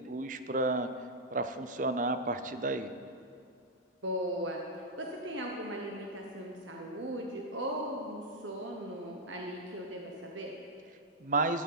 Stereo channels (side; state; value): both; normal; correlation -0.02